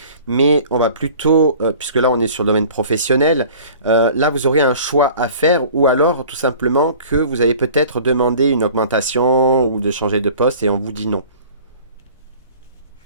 mais on va plutôt, puisque là, on est sur le domaine professionnel, là, vous aurez un choix à faire, ou alors, tout simplement, que vous avez peut-être demandé une augmentation, ou de changer de poste, et on vous dit non.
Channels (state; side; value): inverted; both; correlation -0.46